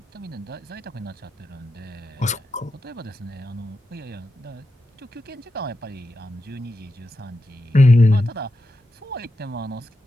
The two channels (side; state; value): both; normal; correlation 0.88